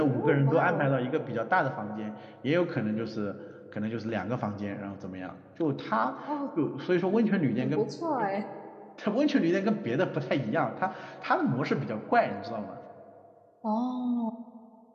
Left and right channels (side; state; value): both; identical; correlation 1.00